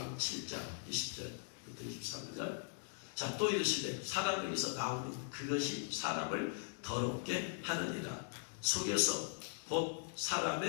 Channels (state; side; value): silent; right; digital silence